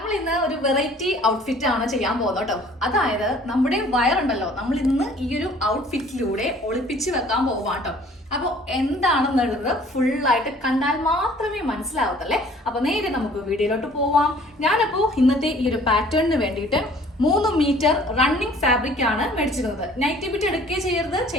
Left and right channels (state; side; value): normal; both; correlation 0.53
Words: നമ്മൾ ഇന്ന് ഒരു വെറൈറ്റി ഔട്ട്ഫിറ്റ് ആണ് ചെയ്യാൻ പോകുന്നത് കേട്ടോ. അതായത് നമ്മുടെ വയറുണ്ടല്ലോ, നമ്മൾ ഇന്ന് ഈ ഒരു ഔട്ട്ഫിറ്റിലൂടെ ഒളിപ്പിച്ച് വെക്കാൻ പോവാം കേട്ടോ. അപ്പോൾ എന്താണെന്നുള്ളത് ഫുള്ളായിട്ട് കണ്ടാൽ മാത്രമേ മനസ്സിലാവത്തല്ലേ. അപ്പൊ നേരെ നമുക്ക് വീഡിയോയിലോട്ട് പോവാം. ഞാനപ്പോ ഇന്നത്തെ ഈ ഒരു പാറ്റേണിന് വേണ്ടിയിട്ട് 3 മീറ്റർ റണ്ണിങ് ഫാബ്രിക് ആണ് മേടിച്ചിരുന്നത്. നൈറ്റി ബിറ്റ് എടുക്കുകയും ചെയ്യരുത്,